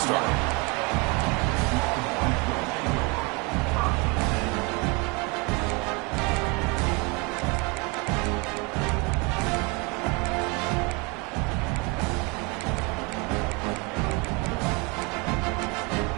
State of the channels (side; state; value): left; quieter; 29.2 dB